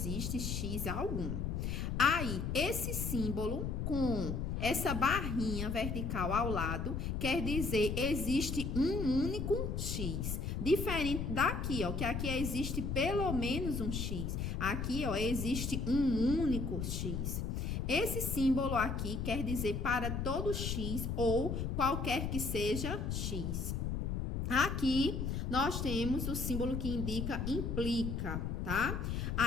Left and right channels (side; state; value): left; noise; rumble, 2 dB below the sound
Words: X algum. Aí, esse símbolo com essa barrinha vertical ao lado, quer dizer, existe um único X. Diferente daqui, ó, que aqui existe pelo menos um X. Aqui, ó, existe um único X. Esse símbolo aqui quer dizer para todo X ou qualquer que seja X. Aqui, nós temos o símbolo que indica implica, tá?